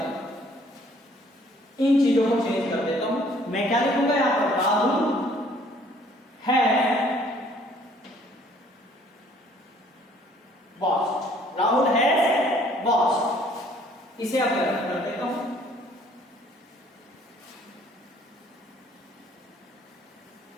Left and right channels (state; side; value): normal; both; correlation 0.59